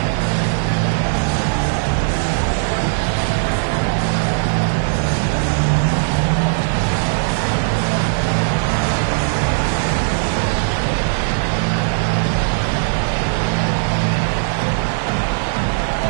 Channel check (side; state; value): left; silent; digital silence